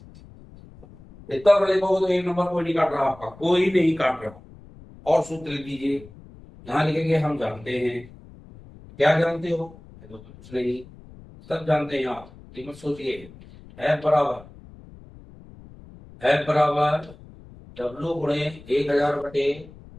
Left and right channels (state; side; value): noise; left; rumble, 20 dB below the sound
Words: इतना बड़े लिखोगे तो एक नंबर कोई नहीं काट रहा, आपका कोई नहीं काट रहा। और सूत्र लिख लीजिए, यहाँ लिखेंगे हम जानते हैं। क्या जानते हो? तो कुछ नहीं, सब जानते हैं आप, तो मत सोचिए। F बराबर W गुणे 1000 बटे